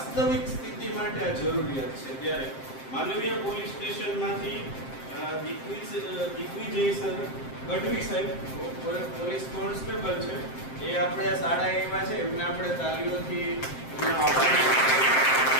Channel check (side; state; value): right; late; 7.6 ms